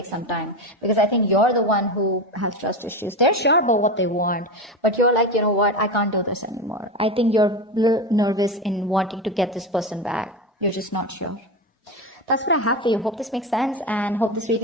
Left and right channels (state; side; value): normal; both; correlation 0.20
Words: some time. Because I think you're the one who has trust issues. They're sure about what they want, but you're like, you know what, I can't do this anymore. I think you're a little nervous in wanting to get this person back. You're just not sure. That's what I have for you. Hope this makes sense, and hope this